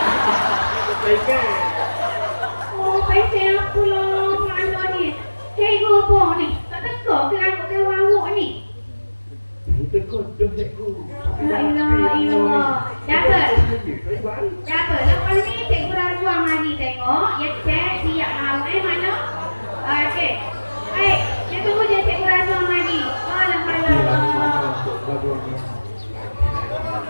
pesen aku lah. Mana ni? Cikgu apa ni? Tak teka ke rambut kawan awak ni? Itu kodoh cikgu. La ilaha illallah. Dapat? Dapat. Dapat. Lepas ni cikgu Razwan mari tengok. Ya cek siap mahu. Mana? Okey. Baik. Saya tunggu je cikgu Razwan mari. Alhamdulillah.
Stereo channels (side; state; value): both; inverted; correlation -1.00